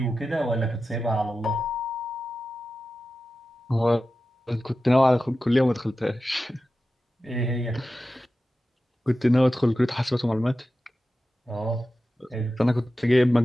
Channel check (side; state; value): both; normal; correlation 0.93